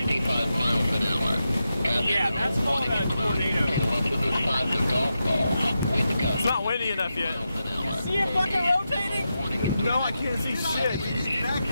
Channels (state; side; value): inverted; both; correlation -0.88